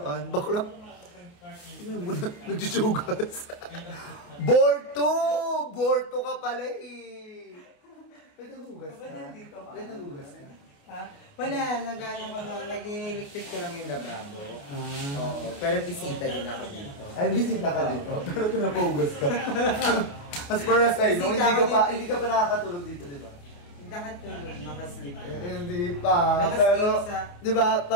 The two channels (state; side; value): late; right; 28 ms